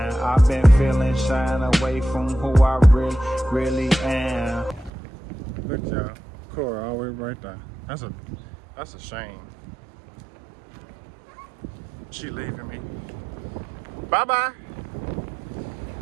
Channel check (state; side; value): drops out; left; at 4.9 s